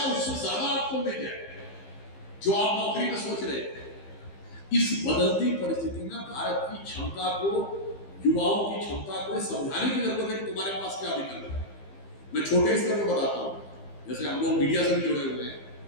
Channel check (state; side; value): late; right; 15 ms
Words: उससे ज्यादा आपको मिल जाए जो आप नौकरी में सोच रहे हैं। इस बदलती परिस्थिति में भारत की क्षमता को, युवाओं की क्षमता को समझाने की जरूरत है कि तुम्हारे पास क्या विकल्प है। मैं छोटे स्तर पर बताता हूं, जैसे हम लोग मीडिया से भी जुड़े हुए हैं।